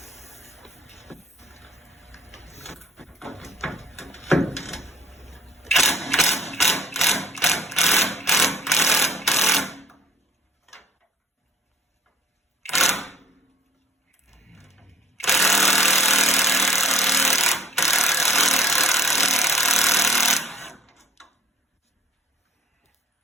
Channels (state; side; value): normal; both; correlation 0.57